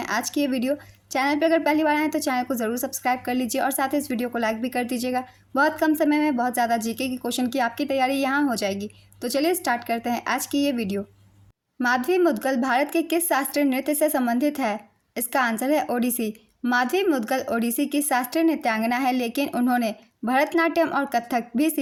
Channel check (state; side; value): identical; both; correlation 1.00